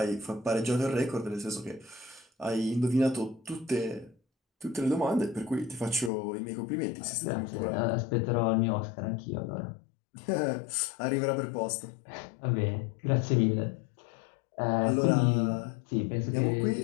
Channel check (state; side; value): drops out; right; at 6.1 s